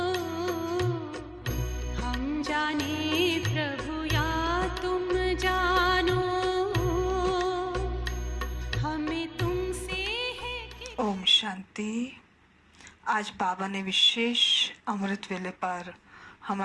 हम जाने प्रभु या तुम जानो, हमें तुमसे है कि। ओम शांति। आज बाबा ने विशेष अमृत वेले पर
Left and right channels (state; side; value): identical; both; correlation 1.00